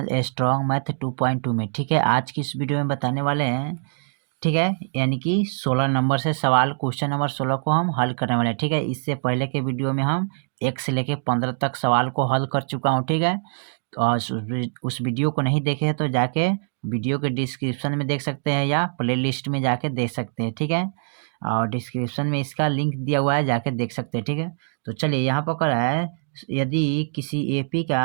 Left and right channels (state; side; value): silent; left; digital silence